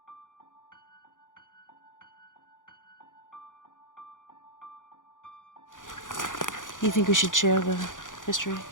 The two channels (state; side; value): late; right; 0.88 ms